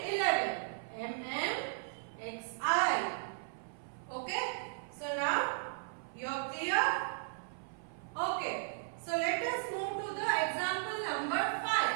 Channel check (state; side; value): silent; left; 54 dB below the other